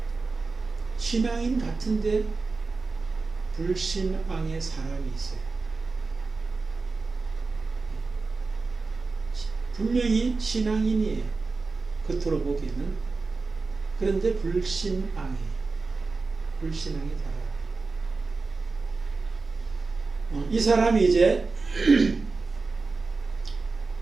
신앙인 같은데 불신앙의 사람이 있어요. 분명히 신앙인이에요. 겉으로 보기에는. 그런데 불신앙이 달아요. 이 사람이 이제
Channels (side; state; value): left; quieter; 4.0 dB